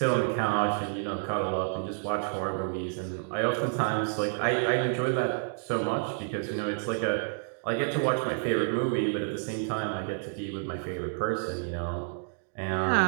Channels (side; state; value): left; silent; digital silence